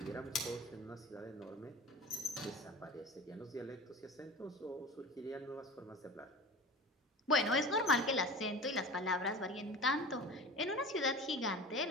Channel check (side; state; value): both; normal; correlation 0.35